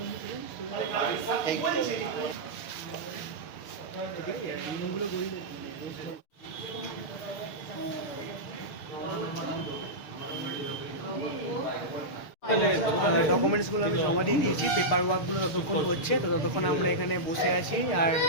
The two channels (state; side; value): late; right; 6.6 ms